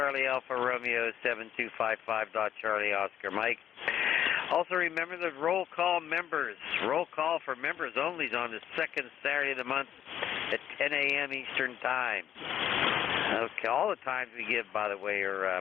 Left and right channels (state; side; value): quieter; right; 10.2 dB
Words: Alpha Romeo 7255. Charlie Oscar Mike. Also remember the roll call members. Roll call for members only is on the second Saturday of the month at 10 a.m. Eastern Time. Okay, all the times we give, by the way, are